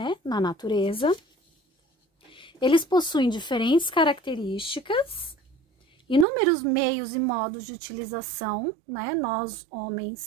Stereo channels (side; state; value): left; drops out; at 6.2 s